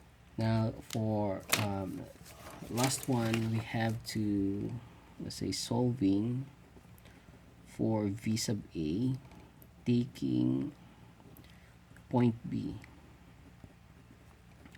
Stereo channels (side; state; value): both; identical; correlation 1.00